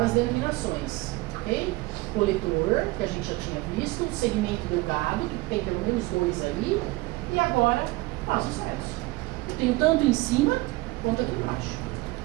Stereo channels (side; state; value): left; quieter; 21.3 dB